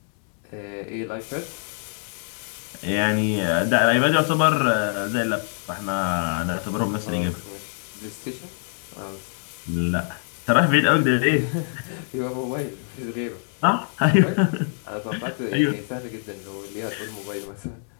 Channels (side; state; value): right; silent; 62 dB below the other